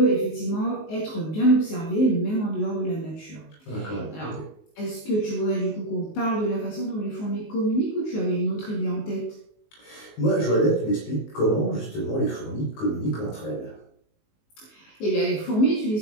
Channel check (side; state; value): right; late; 19 ms